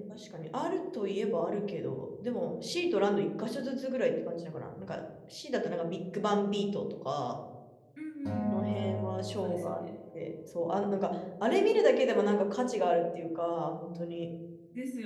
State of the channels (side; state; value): both; identical; correlation 1.00